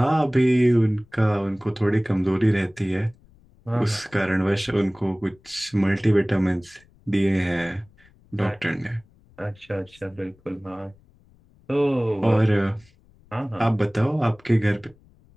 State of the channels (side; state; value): left; noise; rumble, 30 dB below the sound